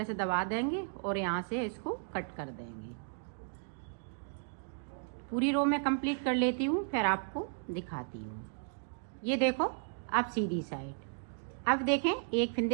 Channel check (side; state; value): left; silent; digital silence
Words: से दबा देंगे और यहाँ से इसको कट कर देंगे। पूरी रो में कंप्लीट कर लेती हूँ, फिर आपको दिखाती हूँ। ये देखो अब सीधी साइड। अब देखें 1